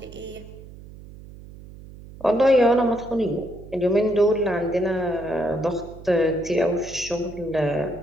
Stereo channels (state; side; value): noise; right; hum, 17 dB below the sound